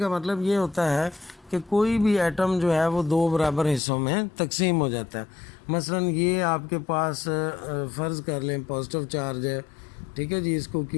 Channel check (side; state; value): right; drops out; at 3.8 s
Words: मतलब ये होता है कि कोई भी एटम जो है वो दो बराबर हिस्सों में तकसीम हो जाता है। मसलन ये आपके पास फ़र्ज़ कर लें पॉजिटिव चार्ज है, ठीक है जी, इसको